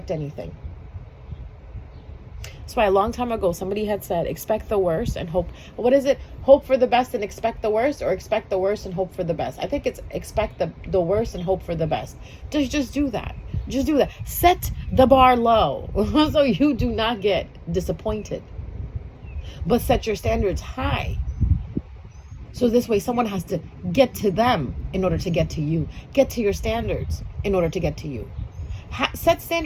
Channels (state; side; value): identical; both; correlation 1.00